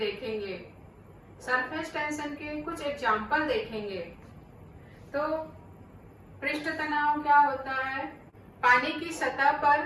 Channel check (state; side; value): identical; both; correlation 1.00